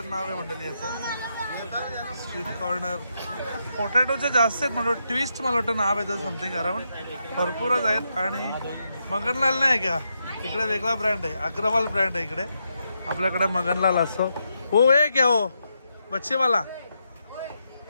नाव आहे मंडळी याचं. स्ट्रीट कॉर्नर पोटॅटोचे जास्त आहेत म्हणजे ट्विस्ट मला वाटतं नाव आहे त्याचं समथिंग अराउंड. भरपूरच आहेत. आणि मगनलाल नाही का इकडे वेगळा ब्रँड आहे. अग्रवाल ब्रँड आहे इकडे. आपल्याकडे मगनलाल असतो. हो हे क्या हो बच्चेवाला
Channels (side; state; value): both; inverted; correlation -0.83